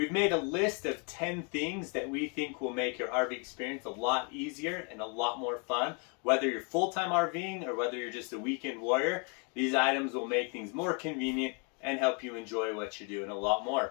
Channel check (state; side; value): quieter; right; 36.5 dB